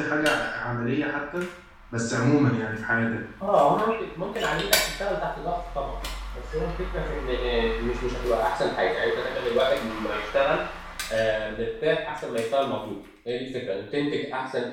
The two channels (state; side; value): identical; both; correlation 1.00